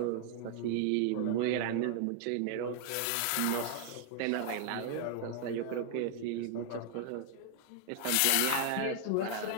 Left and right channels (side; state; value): both; different; correlation 0.00